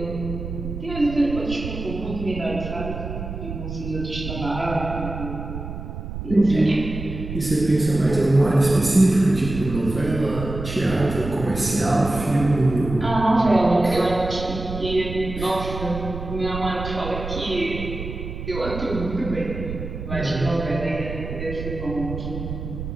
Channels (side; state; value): right; noise; rumble, 8 dB below the sound